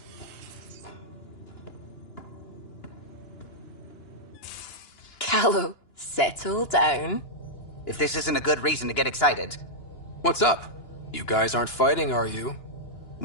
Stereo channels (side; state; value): right; late; 2.9 ms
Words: Callow, settle down. If this isn't a good reason to get excited. What's up? You guys aren't fighting, are you?